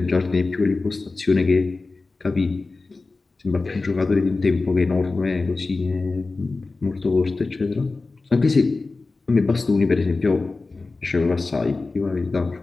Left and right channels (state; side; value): quieter; right; 3.6 dB